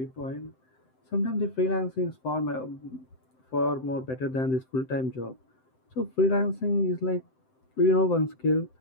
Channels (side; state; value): right; late; 7.8 ms